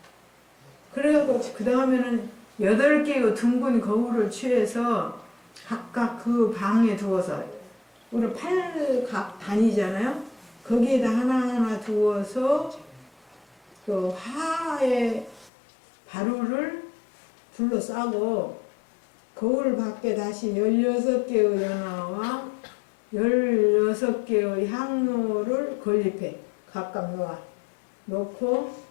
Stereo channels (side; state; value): right; drops out; at 15.5 s